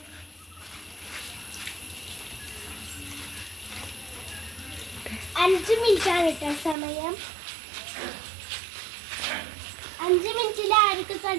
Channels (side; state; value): left; drops out; at 6.8 s